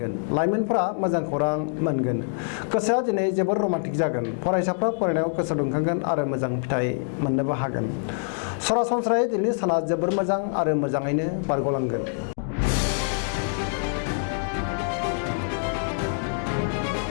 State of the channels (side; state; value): right; silent; digital silence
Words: लाइमोनफोरा मोजां खौरां मोनगोन गोसोआ दिनै जोबोर रमान्टिक जागोन फरायसाफ्रा फरायनायाव गोसो दुंखांगोन आरो मोजां फिथाइ मोननोबो हागोन सरासनस्रायै दिनैनि साना जोबोर मोजां आरो मोजाङैनो बारग'लांगोन।